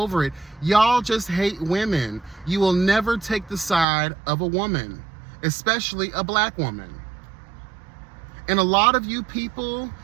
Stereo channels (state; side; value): drops out; left; at 3.9 s